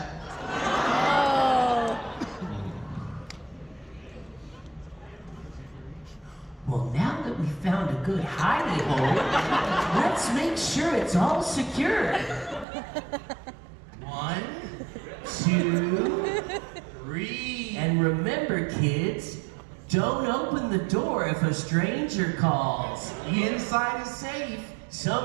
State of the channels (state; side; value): drops out; left; at 12.7 s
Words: Well, now that we found a good hiding hole, let's make sure it's all secure. 1, 2, 3. And remember, kids, don't open the door if a stranger calls. The inside is safe. The